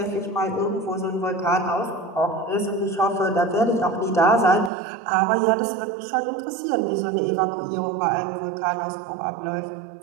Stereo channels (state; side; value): drops out; left; at 4.7 s